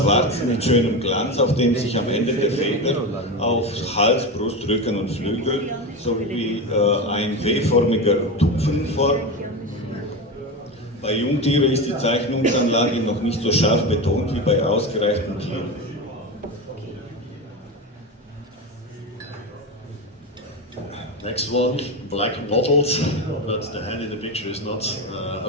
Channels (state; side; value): normal; both; correlation 0.20